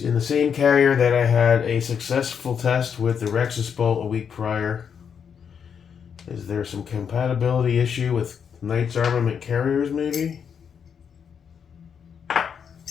the same carrier that I had a successful test with the Rexus bolt a week prior. Is there some compatibility issue with Knights Armament carriers, maybe?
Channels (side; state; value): right; quieter; 7.2 dB